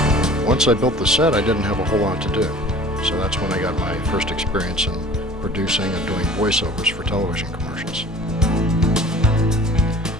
Once I built the set, I didn't have a whole lot to do, so that's when I got my first experience in producing and doing voiceovers for television commercials.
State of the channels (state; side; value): normal; both; correlation 0.45